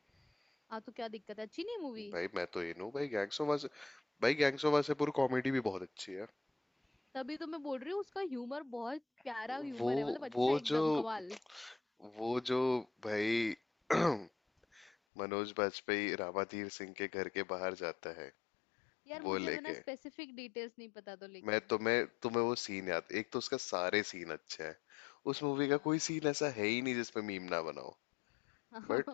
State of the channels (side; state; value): right; drops out; at 14.9 s